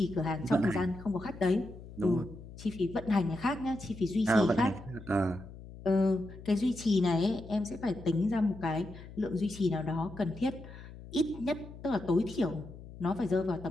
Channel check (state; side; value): noise; left; hum, 15 dB below the sound